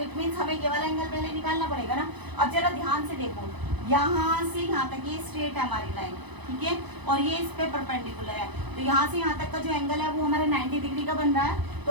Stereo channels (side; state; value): left; late; 1.0 ms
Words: मीन्स हमें ये वाला एंगल पहले निकालना पड़ेगा ना। अब जरा ध्यान से देखो, यहाँ से यहाँ तक ये स्ट्रेट है हमारी लाइन, ठीक है, और ये इस पे परपेंडिकुलर है। तो यहाँ से यहाँ तक का जो एंगल है वो हमारा 90 डिग्री का बन रहा है।